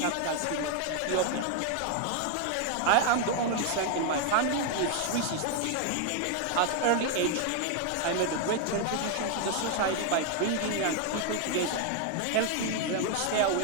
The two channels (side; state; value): both; different; correlation 0.01